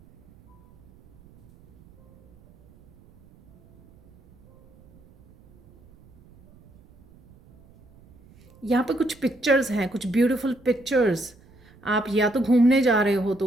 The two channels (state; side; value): noise; right; rumble, 28 dB below the sound